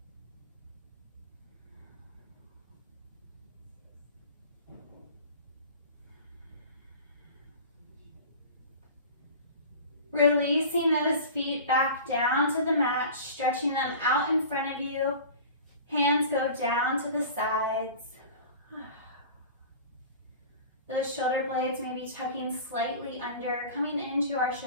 Releasing those feet back down to the mat, stretching them out in front of you. Hands go down to the sides. Those shoulder blades may be tucking slightly under, coming into our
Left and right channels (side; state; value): both; inverted; correlation -0.39